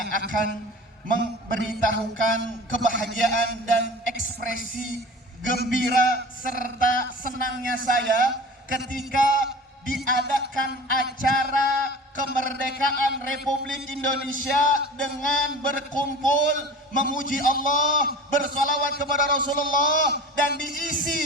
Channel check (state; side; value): normal; both; correlation 0.37